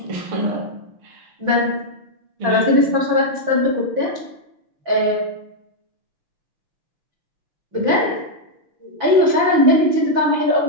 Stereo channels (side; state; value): left; late; 6.0 ms